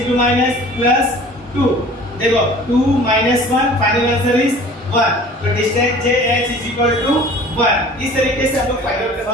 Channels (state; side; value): normal; both; correlation 0.46